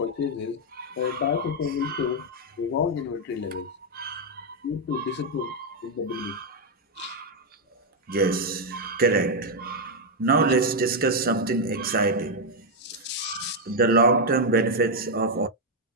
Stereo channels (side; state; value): both; normal; correlation 0.01